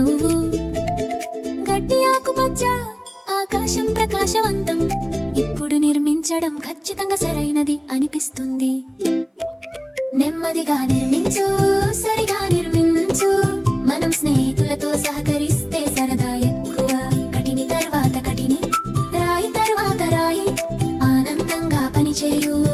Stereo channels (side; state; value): both; identical; correlation 1.00